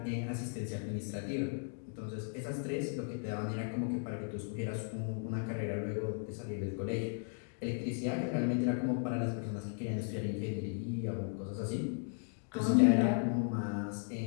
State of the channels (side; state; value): right; silent; 54 dB below the other